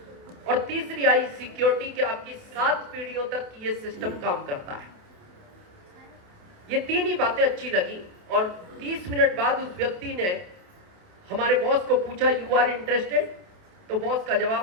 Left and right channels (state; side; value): late; left; 28 ms